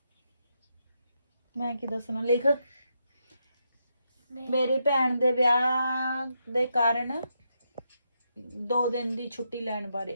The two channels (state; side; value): inverted; both; correlation -0.82